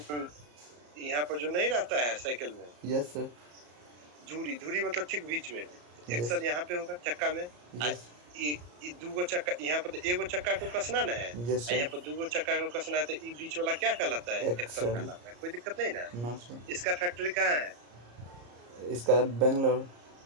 यहाँ पर जो नहीं रहता है साइकिल में, यस सर। धुरी। धुरी मतलब ठीक बीच में। यस। एक्सल यहाँ पे होगा चक्का में। यस। ये दूगो चक्का, यहाँ पर एगो चक्का को कसना ना है, यस यहाँ सर। पर दूगो चक्का को कसना है, तो ये बीच वाला क्या कहलाता है? Axle axle. कहलाता है। कोई दिक्कत नहीं ना? No sir. इसका फैक्ट्री कहाँ है? इसका बेंगलोर।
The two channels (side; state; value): left; late; 34 ms